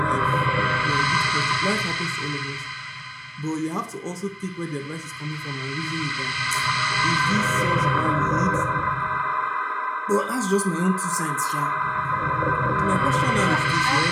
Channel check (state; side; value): identical; both; correlation 1.00